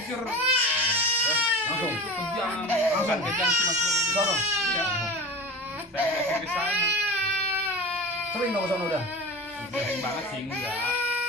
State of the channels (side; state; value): both; normal; correlation 0.32